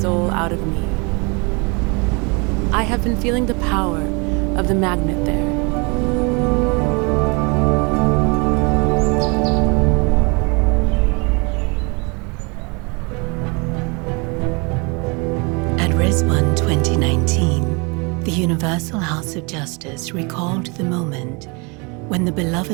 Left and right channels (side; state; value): left; quieter; 30.5 dB